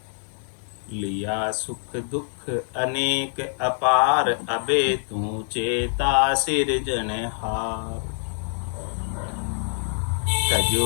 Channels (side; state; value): right; silent; 62 dB below the other